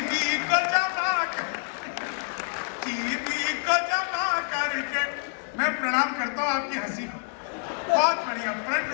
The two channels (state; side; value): silent; right; 57 dB below the other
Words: को जमा करके मैं प्रणाम करता हूँ आपकी हंसी को। बहुत बढ़िया, फ्रंट